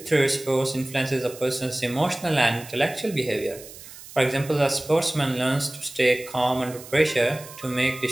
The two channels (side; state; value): right; noise; hiss, 17 dB below the sound